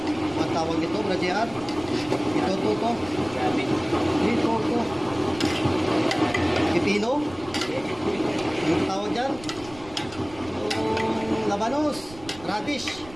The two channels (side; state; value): right; noise; rumble, 19 dB below the sound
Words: matawag nito, bradyaan. Ito. Pipino. Anong tawag dyan? Yung labanos. Radish.